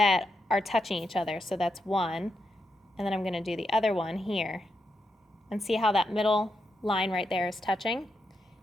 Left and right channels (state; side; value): normal; both; correlation 0.84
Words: are touching each other. So that's one, and then I'm going to do the other one here. And see how that middle line right there is touching?